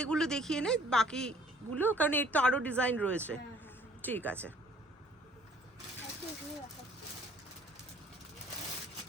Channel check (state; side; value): normal; both; correlation 0.56